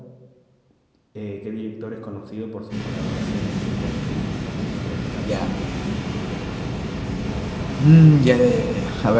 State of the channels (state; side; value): identical; both; correlation 1.00